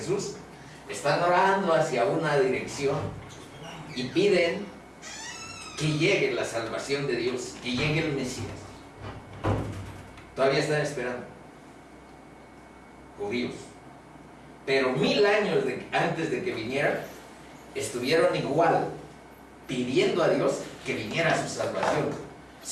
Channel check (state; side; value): identical; both; correlation 1.00